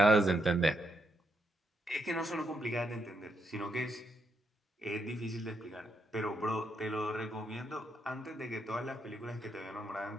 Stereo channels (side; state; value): both; normal; correlation 0.79